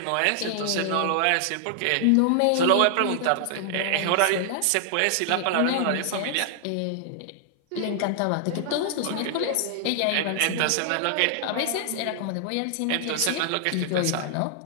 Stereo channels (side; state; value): both; different; correlation -0.01